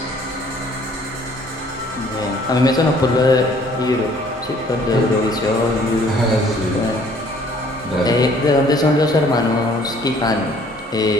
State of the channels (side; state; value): both; normal; correlation 0.58